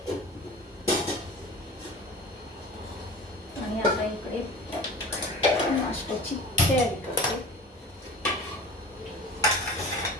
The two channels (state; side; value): normal; both; correlation 0.38